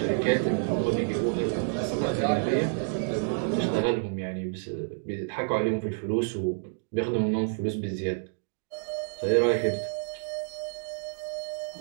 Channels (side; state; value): left; silent; digital silence